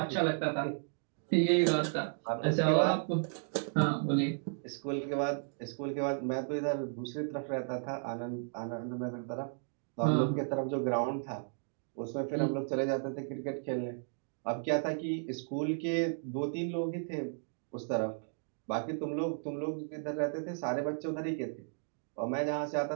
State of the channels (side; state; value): left; silent; digital silence